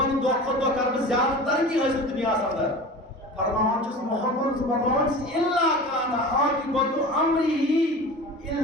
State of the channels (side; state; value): both; normal; correlation 0.35